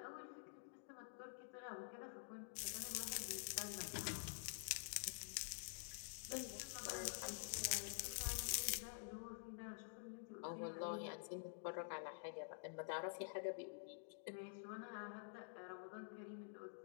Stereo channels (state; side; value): silent; right; digital silence